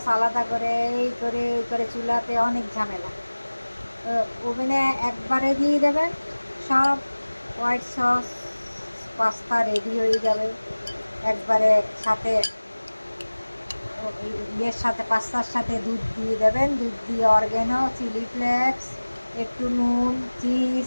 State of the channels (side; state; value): both; inverted; correlation -1.00